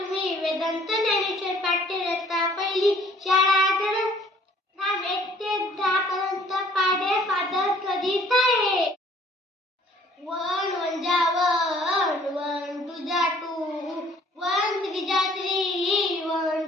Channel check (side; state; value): both; normal; correlation 0.58